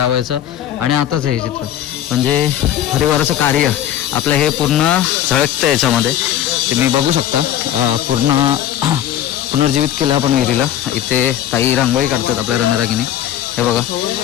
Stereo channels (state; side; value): quieter; right; 11.6 dB